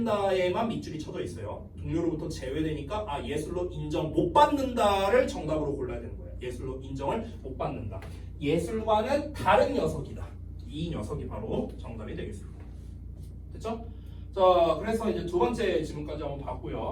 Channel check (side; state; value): both; identical; correlation 1.00